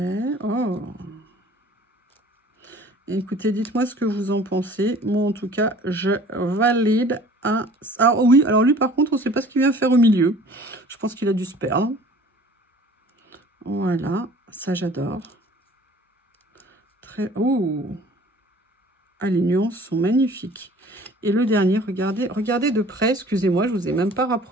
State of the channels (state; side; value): normal; both; correlation 0.49